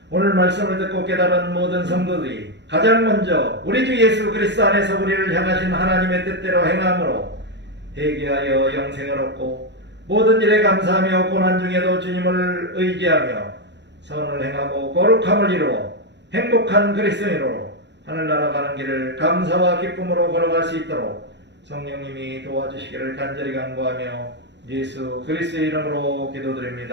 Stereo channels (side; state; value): left; late; 0.51 ms